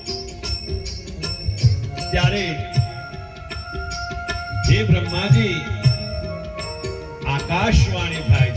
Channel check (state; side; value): identical; both; correlation 1.00